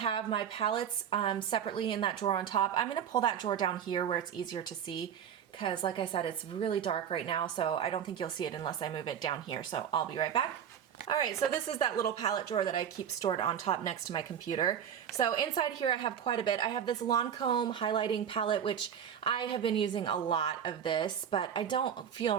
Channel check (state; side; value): quieter; left; 8.7 dB